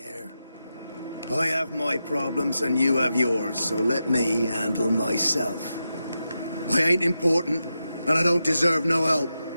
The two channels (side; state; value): both; inverted; correlation -0.89